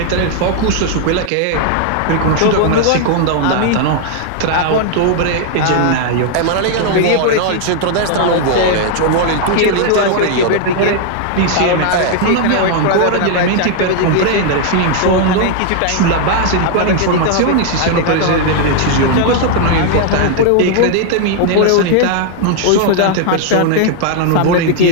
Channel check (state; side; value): different; both; correlation 0.00